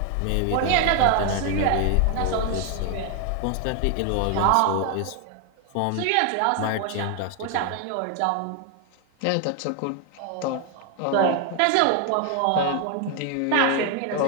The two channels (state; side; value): different; both; correlation 0.01